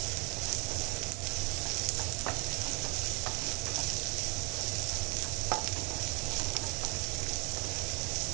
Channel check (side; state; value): left; quieter; 31.3 dB